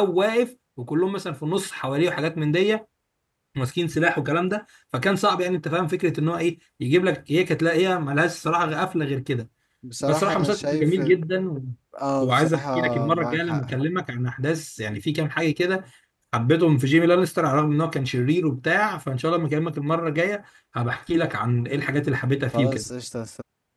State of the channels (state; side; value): identical; both; correlation 1.00